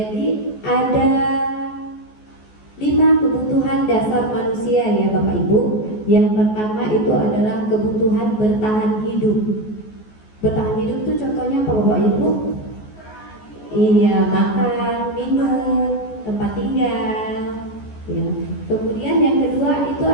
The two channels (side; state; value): right; late; 14 ms